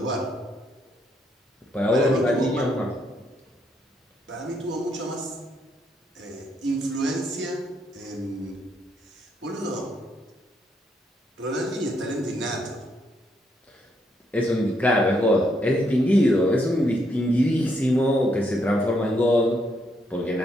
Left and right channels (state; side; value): normal; both; correlation 0.75